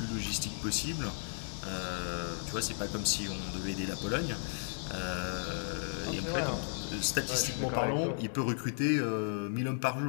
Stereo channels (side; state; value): right; silent; digital silence